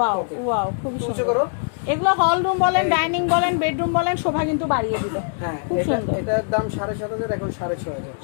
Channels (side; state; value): right; silent; digital silence